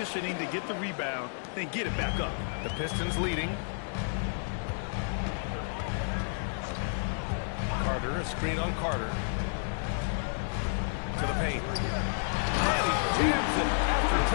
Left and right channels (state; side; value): silent; right; 57 dB below the other